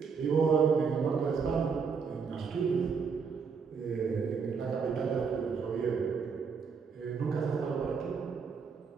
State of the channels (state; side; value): quieter; left; 5.8 dB